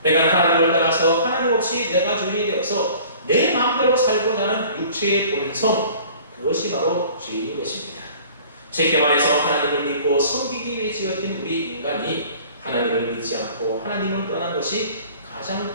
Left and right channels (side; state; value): both; inverted; correlation -0.48